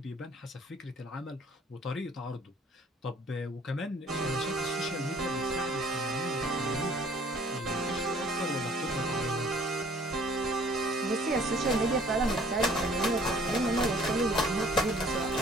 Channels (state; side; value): normal; both; correlation 0.56